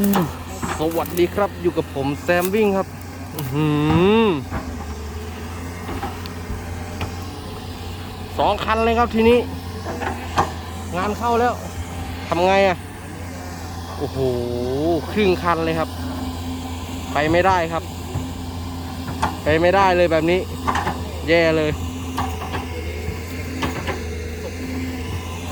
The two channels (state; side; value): identical; both; correlation 1.00